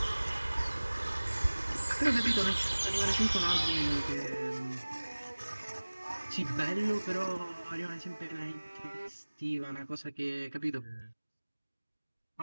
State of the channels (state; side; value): inverted; both; correlation -1.00